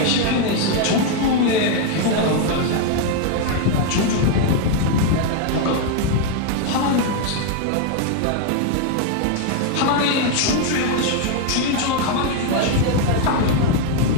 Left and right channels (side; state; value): both; different; correlation 0.00